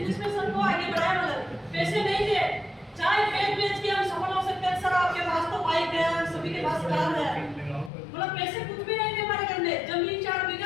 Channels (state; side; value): drops out; right; at 7.9 s